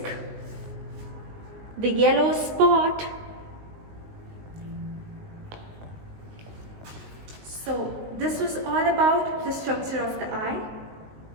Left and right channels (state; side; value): late; left; 19 ms